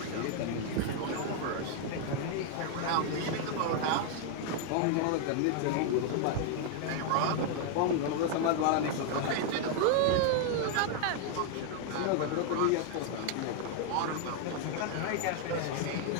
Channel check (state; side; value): different; both; correlation 0.00